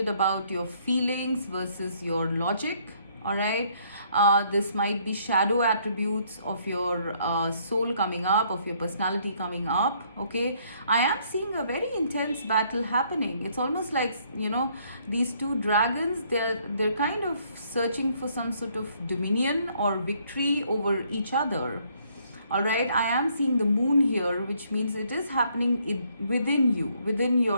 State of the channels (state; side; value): inverted; both; correlation -0.67